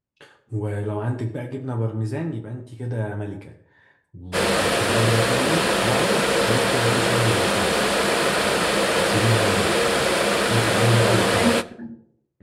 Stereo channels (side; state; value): both; identical; correlation 1.00